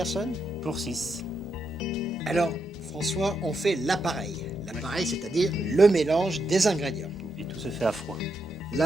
Pour 6. Alors François, on fait l'appareil. L'appareil, c'est-à-dire le mélange des ingrédients. Et tout se fait à froid.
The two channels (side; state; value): both; normal; correlation 0.82